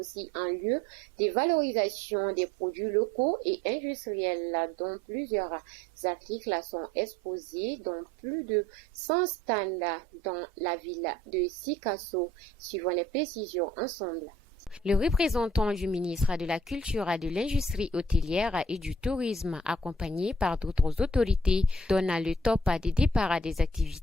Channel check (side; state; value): both; normal; correlation 0.56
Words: un lieu de valorisation des produits locaux et industriels dont plusieurs articles sont exposés dans plus de 100 stands dans la ville de Sikasso. Suivons les précisions ensemble. Le représentant du ministre de la Culture, de l'Industrie hôtelière et du Tourisme, accompagné par d'autres autorités, donne le top des départs des